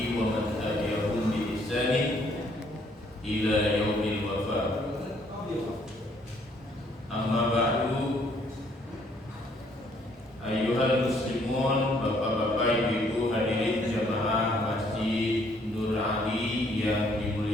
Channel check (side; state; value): both; normal; correlation 0.66